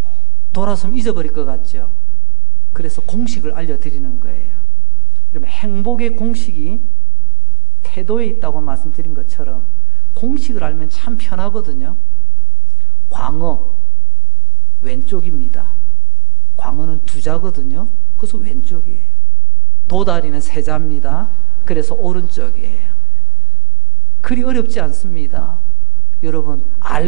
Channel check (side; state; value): left; noise; rumble, 17 dB below the sound